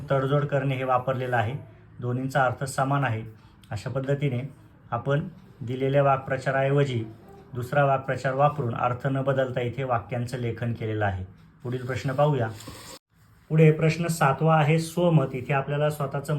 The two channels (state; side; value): identical; both; correlation 1.00